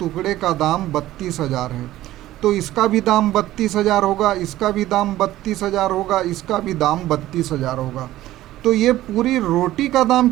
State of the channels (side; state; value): left; quieter; 15.0 dB